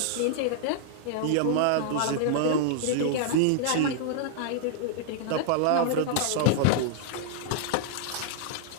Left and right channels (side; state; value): both; different; correlation -0.01